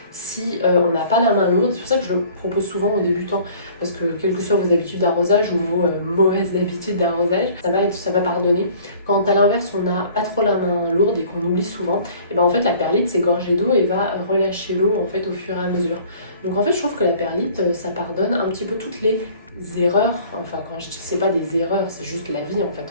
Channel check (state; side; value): inverted; both; correlation -0.51